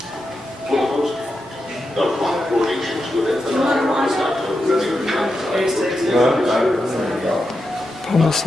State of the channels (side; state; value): both; normal; correlation 0.87